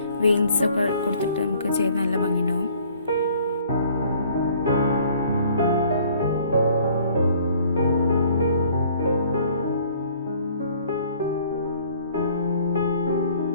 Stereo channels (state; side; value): inverted; both; correlation -0.57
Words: വെയിൻസൊക്കെ കൊടുത്തിട്ട് നമുക്ക് ചെയ്ത് നല്ല ഭംഗിയുണ്ടാവും.